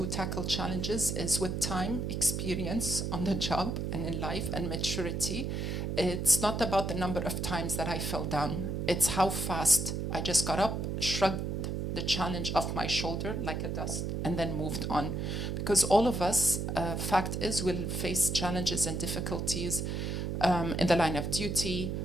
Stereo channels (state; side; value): noise; right; hum, 2 dB below the sound